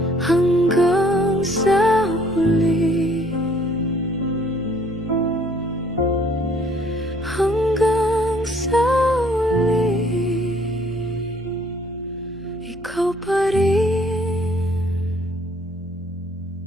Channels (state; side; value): normal; both; correlation 0.61